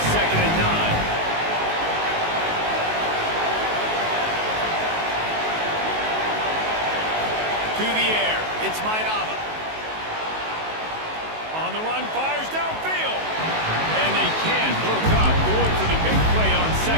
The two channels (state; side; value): late; left; 19 ms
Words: 2nd and 9. To the air. It's Mayava. On the run, fires downfield. And they can't hook up. Going for the big play on